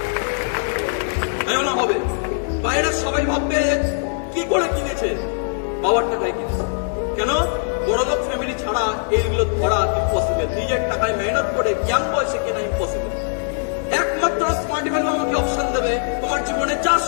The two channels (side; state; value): right; silent; digital silence